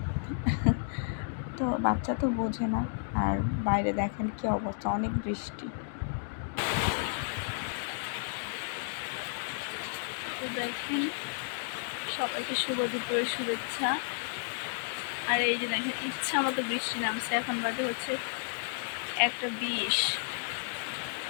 তো বাচ্চা তো বোঝে না। আর বাইরে দেখেন কি অবস্থা, অনেক বৃষ্টি। দেখেন, সবাইকে শুভ দুপুরের শুভেচ্ছা। আর এই যে দেখেন, ইচ্ছা মতো বৃষ্টি নামছে। এখন বাজে হচ্ছে 1:20।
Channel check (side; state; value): right; silent; digital silence